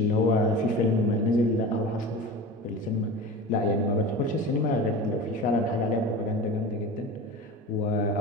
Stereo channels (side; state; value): both; normal; correlation 0.32